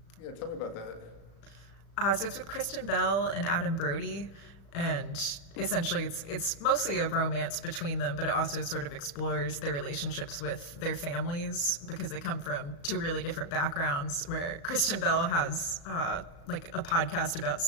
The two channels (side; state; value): right; late; 36 ms